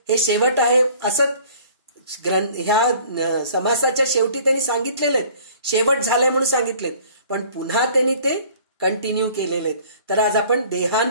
हे शेवट आहे असं ह्या समासाच्या शेवटी त्यांनी सांगितलेले आहेत. शेवट झालाय म्हणून सांगितलेत, पण पुन्हा त्यांनी ते कंटिन्यू केलेले आहेत. तर आज आपण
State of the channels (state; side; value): inverted; both; correlation -0.52